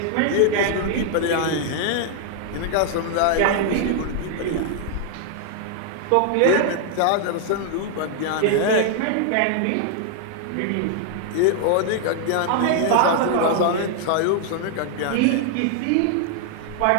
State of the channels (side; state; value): both; different; correlation 0.00